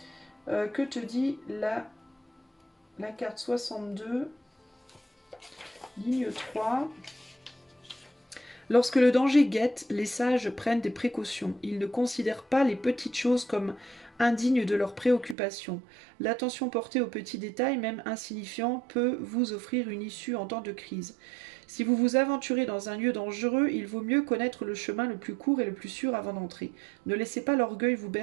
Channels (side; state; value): left; drops out; at 15.4 s